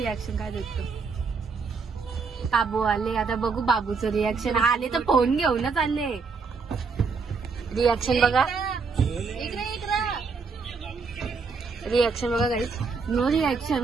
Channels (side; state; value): left; quieter; 4.9 dB